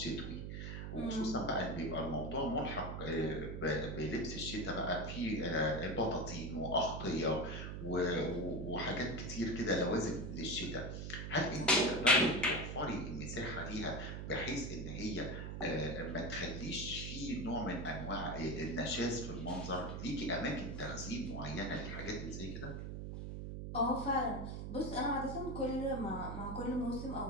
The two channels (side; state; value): right; noise; hum, 5 dB below the sound